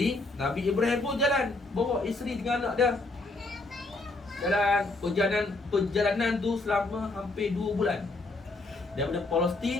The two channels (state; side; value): quieter; right; 3.1 dB